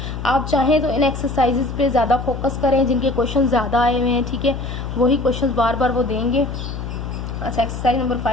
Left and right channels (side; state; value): left; noise; hum, 6 dB below the sound